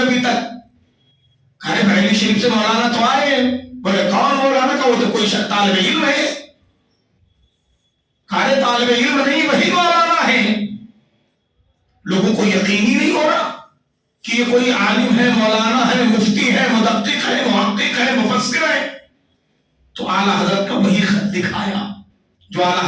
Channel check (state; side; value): identical; both; correlation 1.00